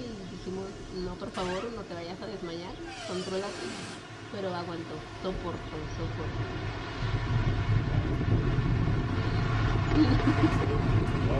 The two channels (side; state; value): both; identical; correlation 1.00